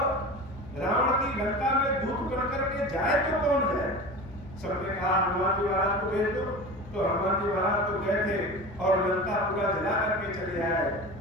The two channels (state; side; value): noise; left; hum, 18 dB below the sound